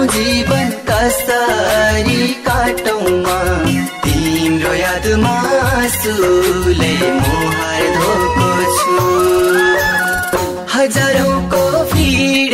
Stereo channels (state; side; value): identical; both; correlation 1.00